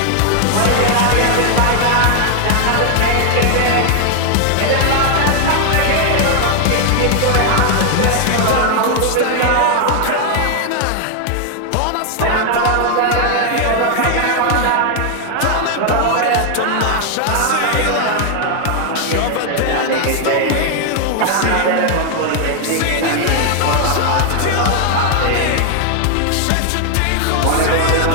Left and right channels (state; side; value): different; both; correlation 0.00